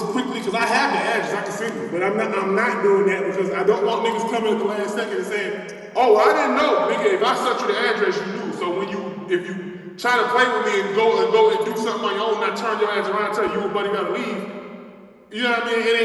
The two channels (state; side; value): identical; both; correlation 1.00